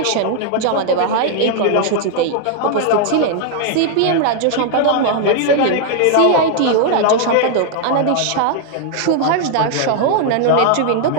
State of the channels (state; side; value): different; both; correlation 0.00